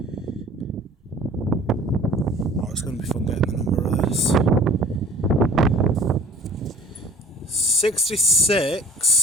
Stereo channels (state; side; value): normal; both; correlation 0.47